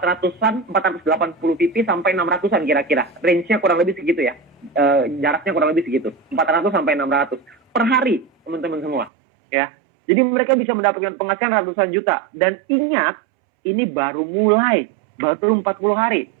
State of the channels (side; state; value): left; drops out; at 9.1 s